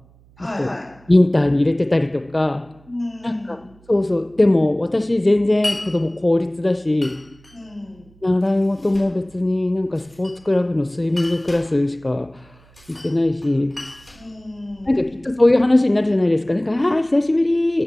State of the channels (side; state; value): right; noise; hum, 28 dB below the sound